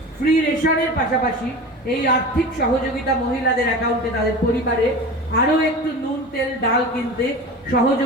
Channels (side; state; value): both; normal; correlation 0.32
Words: ফ্রি রেশনের পাশাপাশি এই আর্থিক সহযোগিতা মহিলাদের অ্যাকাউন্টে তাদের পরিবারে আরও একটু নুন, তেল, ডাল কিনতে